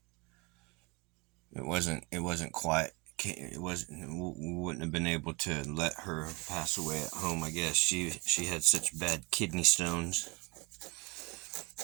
It wasn't quite. It wasn't. We wouldn't have been able to let her pass away at home. I guess she had such bad kidney stones.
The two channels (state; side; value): quieter; left; 27.4 dB